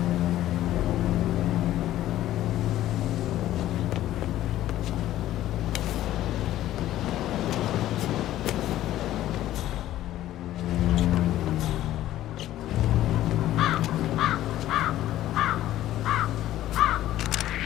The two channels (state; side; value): quieter; right; 13.7 dB